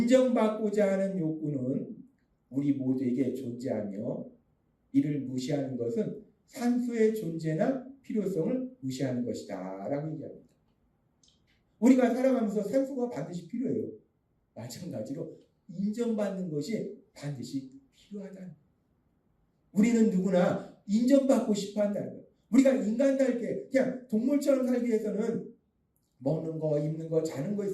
하는 욕구는 우리 모두에게 존재하며 이를 무시하는 것은 산수의 존재나 필요성을 무시하는 것이다 라고 얘기합니다. 우리가 살아가면서 산수가 반드시 필요해요. 마찬가지로 인정받는 것이 반드시 필요하다는 거예요. 우리는 누구나 인정받고 싶어 한다는 거예요. 우리가 인간답게 그냥 동물처럼 살기 위해서는 먹는 거, 입는 거, 자는 거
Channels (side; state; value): both; identical; correlation 1.00